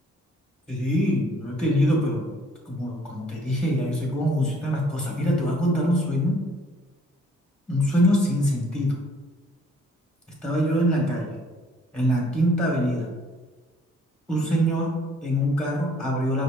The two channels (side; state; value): both; normal; correlation 0.61